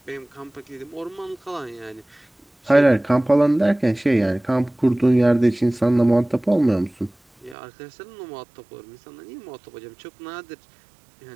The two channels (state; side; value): drops out; left; at 7.6 s